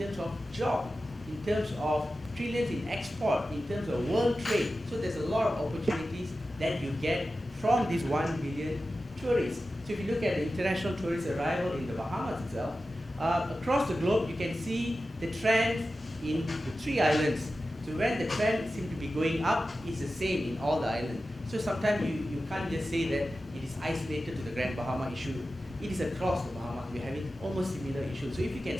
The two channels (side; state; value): both; normal; correlation 0.93